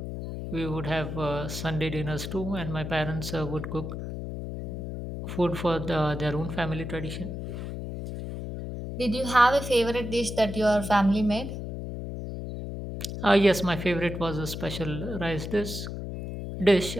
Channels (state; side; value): noise; left; hum, 6 dB below the sound